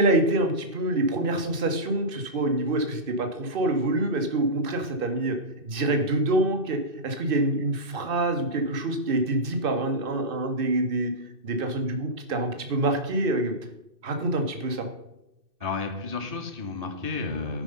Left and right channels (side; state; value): left; late; 2.6 ms